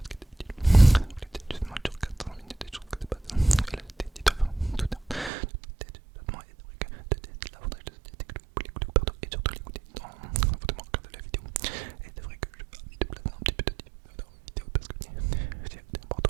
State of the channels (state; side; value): drops out; left; at 5.3 s